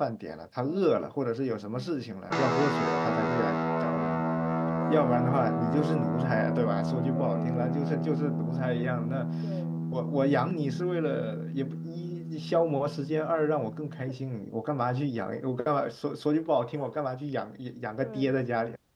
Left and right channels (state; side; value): identical; both; correlation 1.00